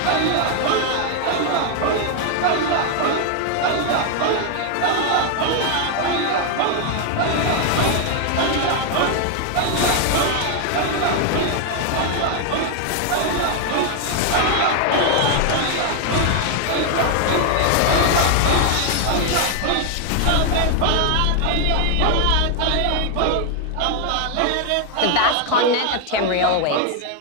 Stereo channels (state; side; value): different; both; correlation 0.00